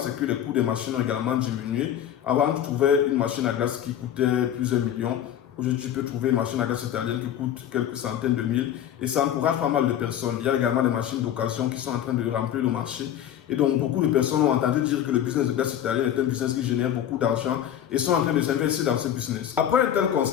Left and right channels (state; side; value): quieter; right; 10.4 dB